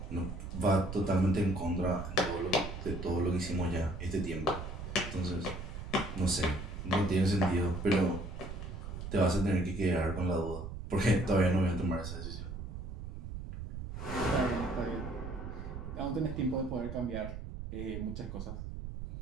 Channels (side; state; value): right; noise; rumble, 8 dB below the sound